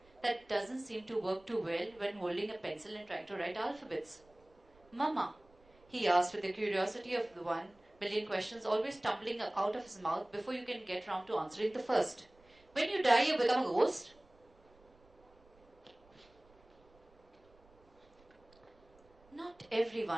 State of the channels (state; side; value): noise; right; rumble, 29 dB below the sound